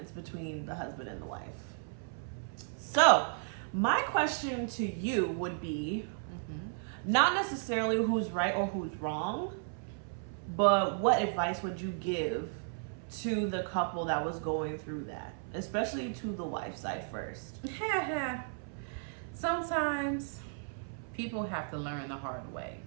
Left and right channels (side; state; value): left; silent; 55 dB below the other